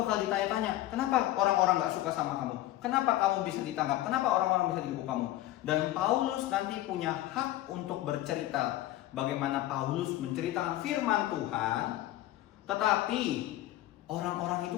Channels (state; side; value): quieter; right; 15.2 dB